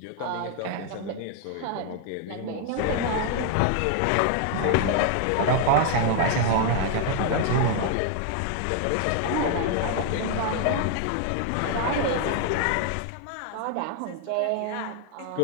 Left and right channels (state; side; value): different; both; correlation 0.00